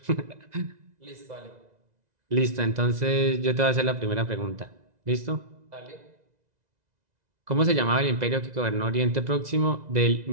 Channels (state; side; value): late; left; 2.0 ms